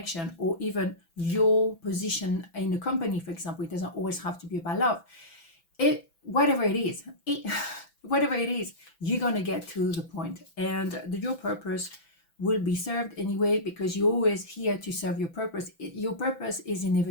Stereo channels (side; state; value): right; late; 6.0 ms